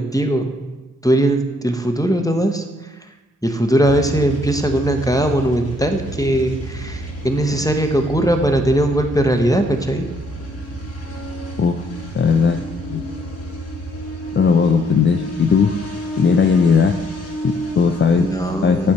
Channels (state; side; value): normal; both; correlation 0.68